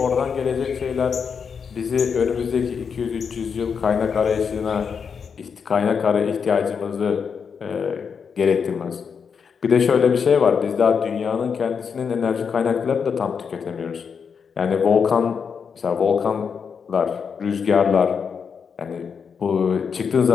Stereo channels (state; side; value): quieter; right; 6.3 dB